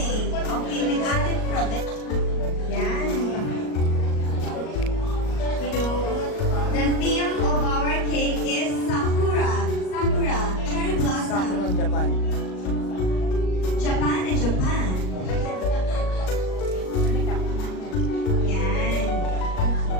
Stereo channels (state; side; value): late; right; 38 ms